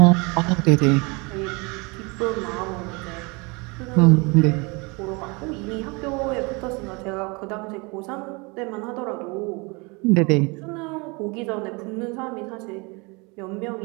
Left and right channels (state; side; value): quieter; left; 28.4 dB